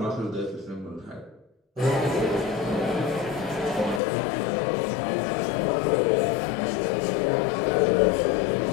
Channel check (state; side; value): drops out; right; at 4.0 s